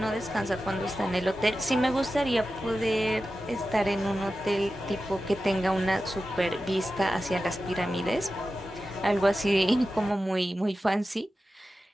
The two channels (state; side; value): normal; both; correlation 0.93